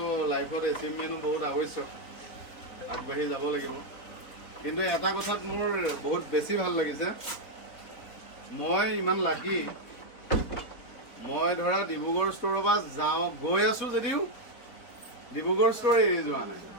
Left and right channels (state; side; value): late; right; 4.5 ms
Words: লাইফত এচিভমেণ্টো বহুত আৱশ্যক আগবাঢ়ি যাব লাগিব কিন্তু এটা কথাত মোৰ বহুত বেছি ভাল লাগিছে মই ইমান লাকি মই ধৰা ডিব্ৰুগড় ষ্ট'ৰৰ পৰা গৈ আছোঁ যদিও ডিব্ৰুগড় ষ্ট'ৰ এৰি যোৱা নাই